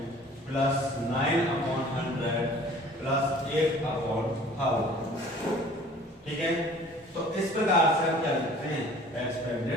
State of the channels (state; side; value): normal; both; correlation 0.49